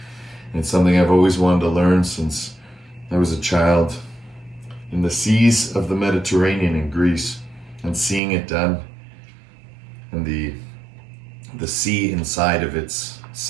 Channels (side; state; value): left; drops out; at 8.2 s